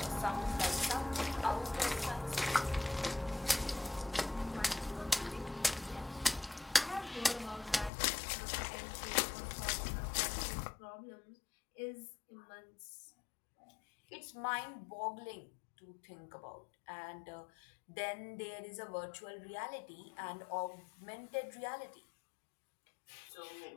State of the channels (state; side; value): drops out; right; at 7.9 s